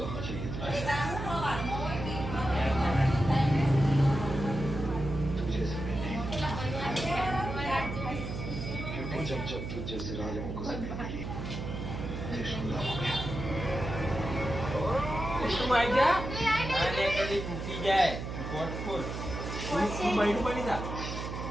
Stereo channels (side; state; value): right; noise; hum, 6 dB below the sound